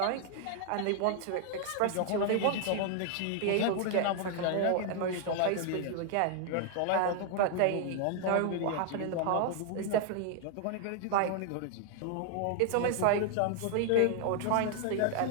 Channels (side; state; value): both; different; correlation 0.00